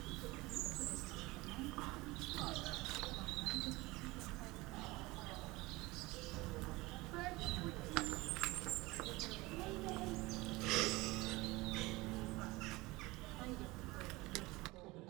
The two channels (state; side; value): quieter; left; 21.6 dB